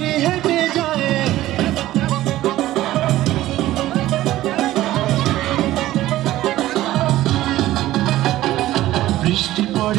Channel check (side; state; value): left; quieter; 15.2 dB